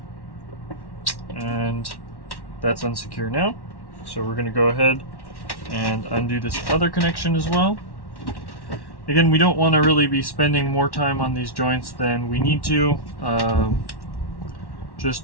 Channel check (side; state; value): right; late; 1.1 ms